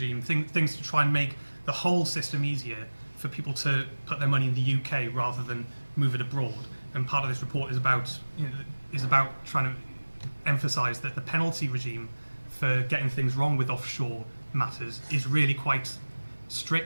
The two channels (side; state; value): both; inverted; correlation -1.00